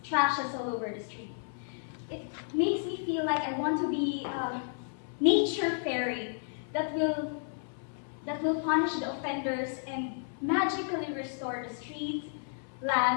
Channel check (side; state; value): right; silent; digital silence